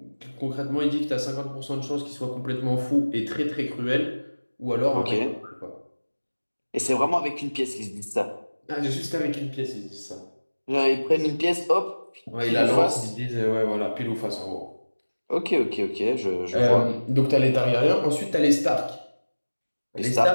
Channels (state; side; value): inverted; both; correlation -1.00